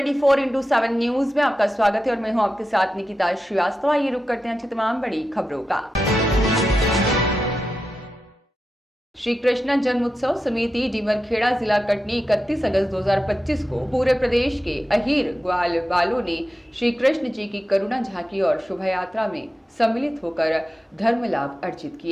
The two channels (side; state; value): both; normal; correlation 0.90